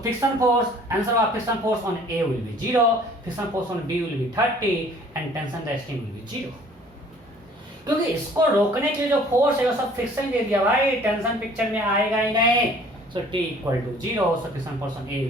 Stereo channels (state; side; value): normal; both; correlation 0.53